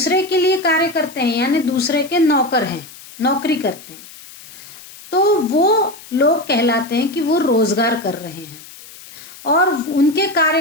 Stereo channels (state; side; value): noise; left; hiss, 19 dB below the sound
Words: के लिए कार्य करते हैं, यानी दूसरे के नौकर हैं, नौकरी करते हैं, तो वो लोग कहलाते हैं कि वो रोजगार कर रहे हैं। और उनके कार्य